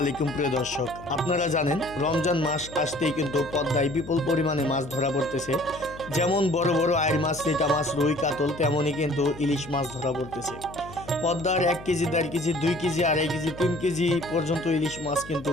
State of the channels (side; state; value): left; noise; hum, 16 dB below the sound